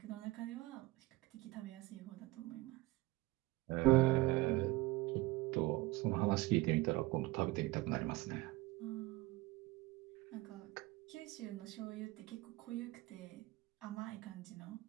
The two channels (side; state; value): left; quieter; 20.0 dB